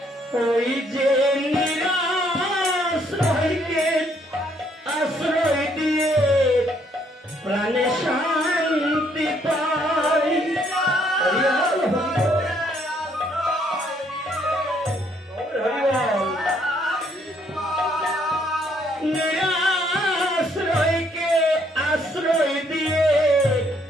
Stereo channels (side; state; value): both; normal; correlation 0.68